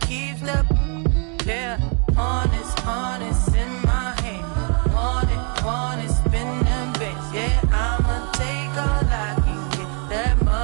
keeps the, yeah, honest in my hand. Want it, spin them bits. Yeah, I'ma take all I can get. That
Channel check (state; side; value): quieter; left; 38.2 dB